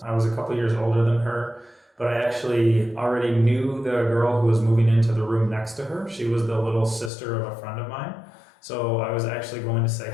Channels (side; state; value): right; drops out; at 7.1 s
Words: I was a couple years older than her, but I actually already knew the girl who was moving into the room next to her. She was the little sister of a friend of mine. So I was actually going to say